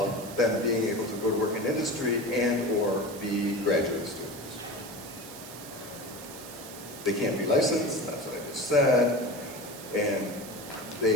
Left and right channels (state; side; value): noise; right; hiss, 14 dB below the sound